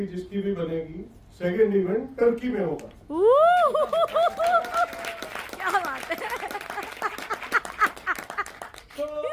जिसकी भी बनेगी, सेकेंड इवेंट टर्की में होगा। क्या बात है। तो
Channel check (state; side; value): identical; both; correlation 1.00